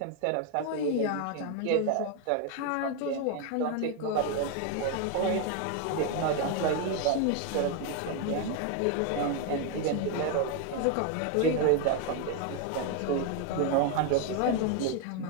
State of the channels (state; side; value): different; both; correlation 0.01